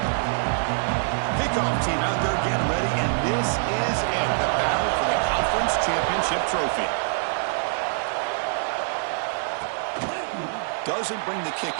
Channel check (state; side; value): silent; left; digital silence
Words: Kickoff team out there getting ready, and this is it, the battle for the Conference Championship trophy. Doesn't bring the kick